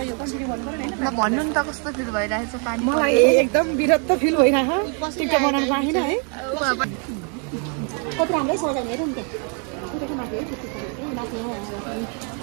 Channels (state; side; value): quieter; left; 39.0 dB